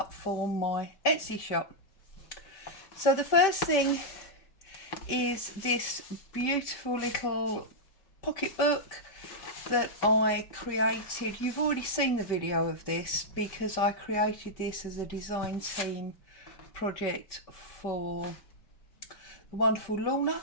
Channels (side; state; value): right; late; 5.2 ms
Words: for my Etsy shop. So the first thing is this beautiful little pocketbook that I created. You've already seen the video of this because I created this as a design team project for the wonderful Lorna